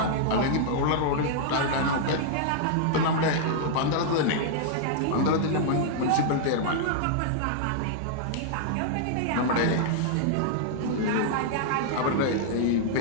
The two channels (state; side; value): different; both; correlation -0.01